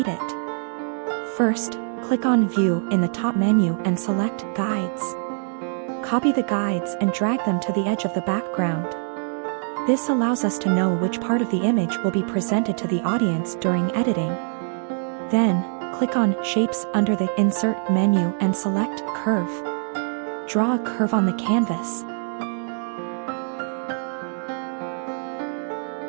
it. First, click on View in the top menu and select Guides. Copy the guides and drag them to the edge of the background. This allows us to know which part of the image will be presented to the audience during editing. Then, click on Shapes under the Insert menu and select Curve. Draw a curve on the canvas.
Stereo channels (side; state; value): left; silent; 62 dB below the other